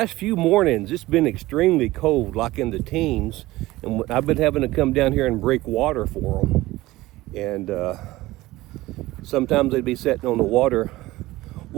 few mornings, it's been extremely cold, like in the teens, and I've been having to come down here and break water for them. And sometimes they'd be sitting on the water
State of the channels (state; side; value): quieter; left; 18.1 dB